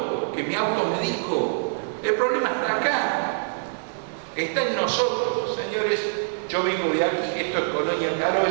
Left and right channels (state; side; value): silent; left; digital silence